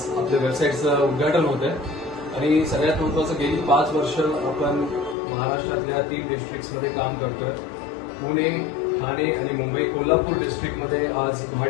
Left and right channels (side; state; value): right; drops out; at 5.2 s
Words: आपल्या वेबसाईटचं उद्घाटन होत आहे. आणि सगळ्यात महत्त्वाचं, गेली 5 वर्ष आपण महाराष्ट्रातल्या 3 डिस्ट्रिक्ट्समध्ये काम करतोय. पुणे, ठाणे आणि मुंबई. कोल्हापूर डिस्ट्रिक्टमध्ये आज